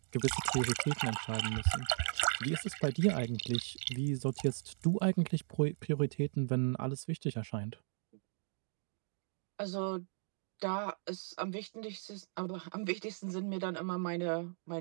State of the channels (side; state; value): left; silent; digital silence